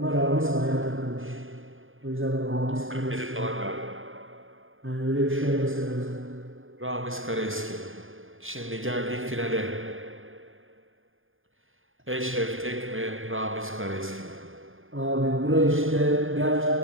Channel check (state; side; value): late; left; 0.59 ms